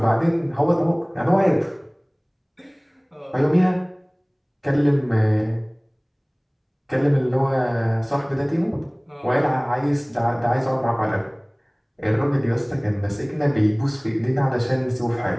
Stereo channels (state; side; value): identical; both; correlation 1.00